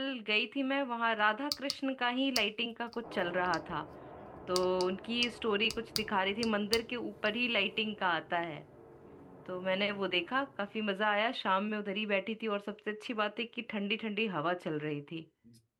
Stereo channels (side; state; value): both; identical; correlation 1.00